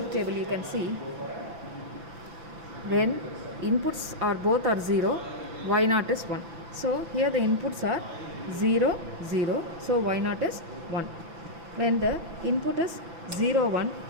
table you can see when inputs are both are 0, Y0 is 1. So here the inputs are 0, 0, so Y0 is 1. When the input is 0, 1,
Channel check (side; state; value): left; late; 5.9 ms